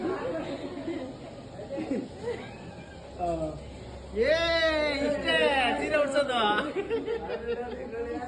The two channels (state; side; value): identical; both; correlation 1.00